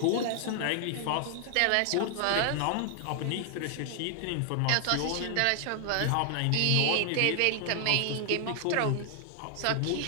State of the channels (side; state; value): both; different; correlation 0.00